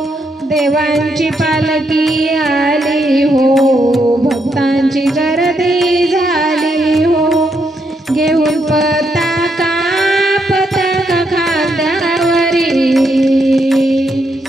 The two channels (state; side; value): normal; both; correlation 0.78